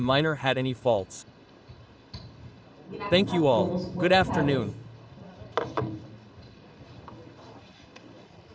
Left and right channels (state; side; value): identical; both; correlation 1.00